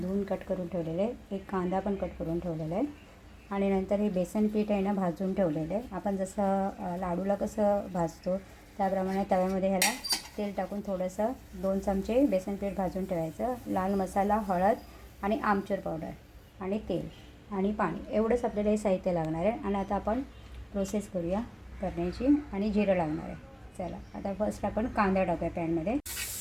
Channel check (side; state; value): both; identical; correlation 1.00